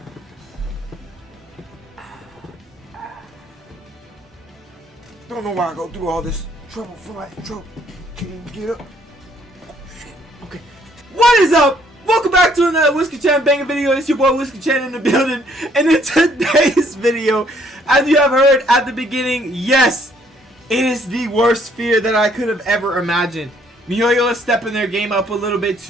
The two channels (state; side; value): normal; both; correlation 0.65